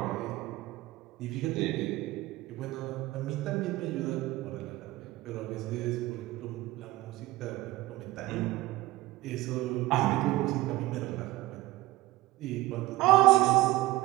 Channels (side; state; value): left; quieter; 18.4 dB